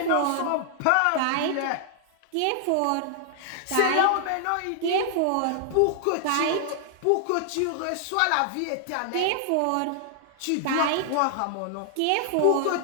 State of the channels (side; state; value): both; different; correlation 0.00